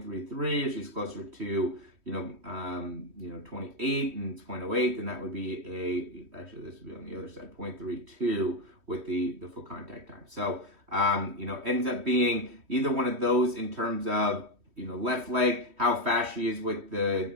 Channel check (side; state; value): left; late; 3.1 ms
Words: If she's closer to 28 and it's 0.08, then that would be actually this would be on the other side, 0.32 with the full contact time. So ends up being either one of those in terms of left leg, how fast she is with the